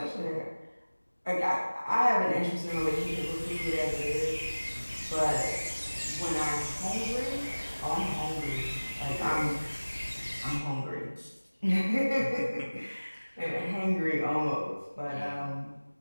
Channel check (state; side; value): inverted; both; correlation -1.00